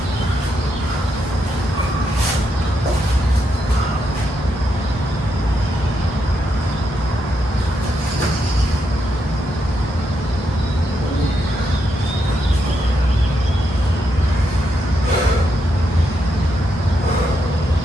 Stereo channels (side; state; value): both; normal; correlation 0.81